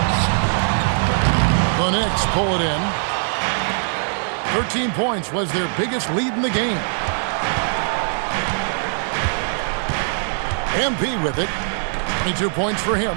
The Knicks pull it in. 13 points was their biggest lead in the game. MP with it. 22 points for him.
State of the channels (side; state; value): left; silent; digital silence